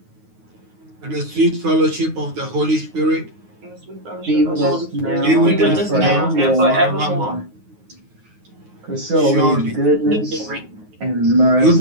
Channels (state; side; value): late; left; 9.5 ms